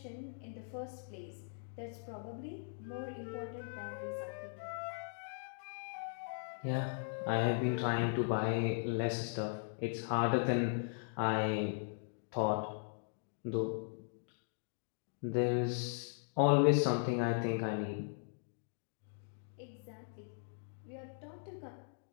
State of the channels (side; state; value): right; silent; digital silence